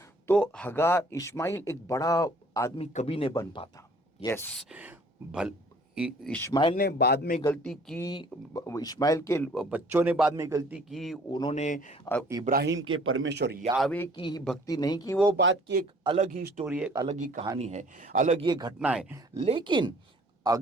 तो हगार इस्माइल एक बड़ा आदमी कभी नहीं बन पाता। यस, भल इस्माइल ने बाद में गलती की, इस्माइल के बच्चों ने बाद में गलती की, उन्होंने इब्राहिम के परमेश्वर यावे की ही भक्ति नहीं की। वो बात की एक अलग ही स्टोरी है, एक अलग ही कहानी है, अलग ही घटना है। लेकिन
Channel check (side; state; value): both; normal; correlation 0.55